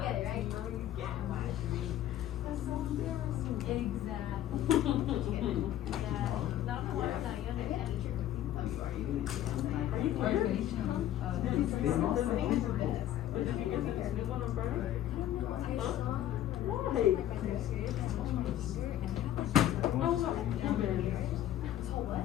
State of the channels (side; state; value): right; quieter; 12.4 dB